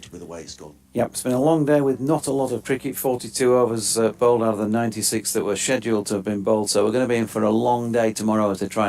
with the way it's gone. Yep, it's been a long day with not a lot of cricket. 42 overs bowled out of the 96 that were scheduled to have been bowled, so we're going to be in for a long day tomorrow as they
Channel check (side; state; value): both; identical; correlation 1.00